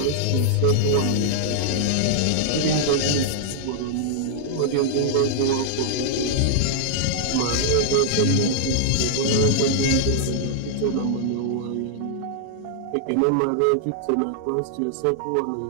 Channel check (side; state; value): both; different; correlation -0.01